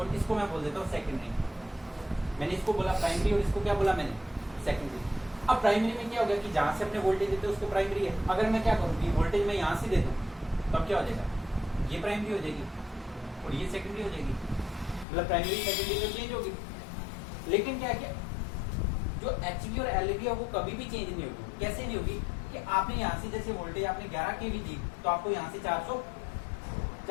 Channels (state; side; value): drops out; right; at 15.1 s